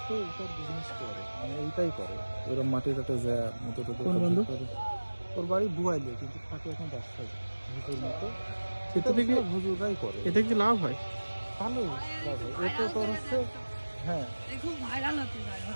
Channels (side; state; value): both; inverted; correlation -1.00